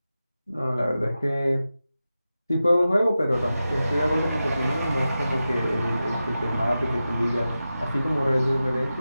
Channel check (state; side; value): inverted; both; correlation -0.93